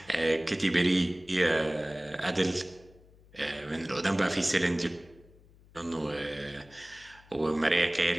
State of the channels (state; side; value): noise; left; hum, 26 dB below the sound